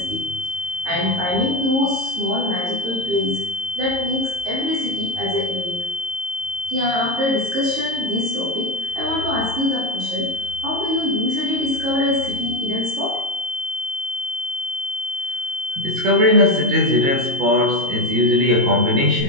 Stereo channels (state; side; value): late; left; 22 ms